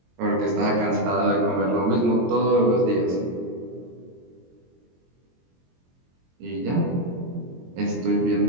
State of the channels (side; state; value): left; late; 22 ms